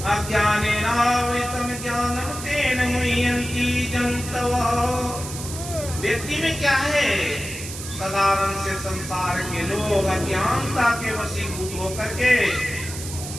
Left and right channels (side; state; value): right; noise; hiss, 10 dB below the sound